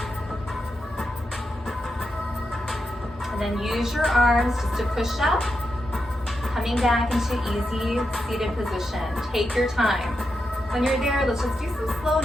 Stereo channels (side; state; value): both; normal; correlation 0.86